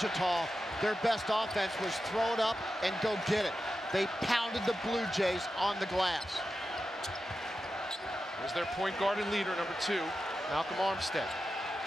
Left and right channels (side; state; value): both; normal; correlation 0.91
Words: their best offense was throw it up and go get it. They pounded the Blue Jays on the glass. There's their point guard and leader, number 2, Malcolm Armstead.